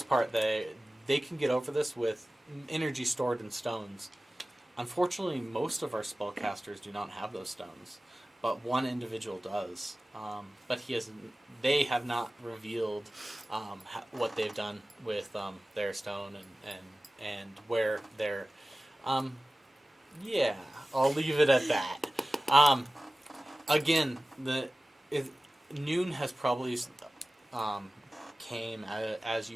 part, they can get over this with energy stored in stones. Unfortunately, most of our spellcasters do not have those stones, but one individual does. But they have not revealed what they've done with their stone and where they're. Yeah, I'll leave it at that. Again, noon has probably came as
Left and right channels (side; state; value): both; normal; correlation 0.96